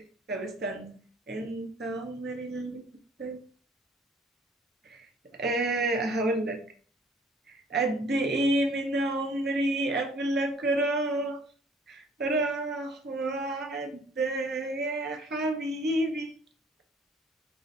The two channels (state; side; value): normal; both; correlation 0.56